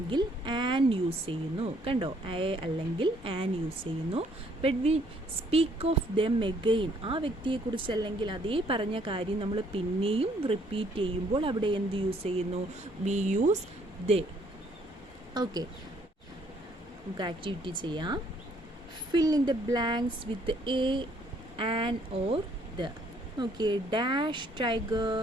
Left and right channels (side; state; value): both; normal; correlation 0.65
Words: ആൻ യൂസ് ചെയ്യുന്നു. കണ്ടോ? എ അല്ലെങ്കിൽ ആൻ യൂസ് ചെയ്യുന്നു. But we speak of them again. ആ വ്യക്തിയെക്കുറിച്ച് അല്ലെങ്കിൽ അതേ പറഞ്ഞ കാര്യം നമ്മൾ പിന്നെയും റിപ്പീറ്റ് ചെയ്യുമ്പോൾ അവിടെ എന്ത് യൂസ് ചെയ്യുന്നു? We use they. ഓക്കെ. നമുക്ക് ആക്ടിവിറ്റി ചെയ്യാം. Fill in the blanks with a, an or the. Okay. Dash tiger